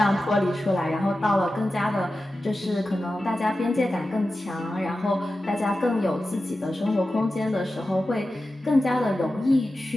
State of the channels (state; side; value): normal; both; correlation 0.93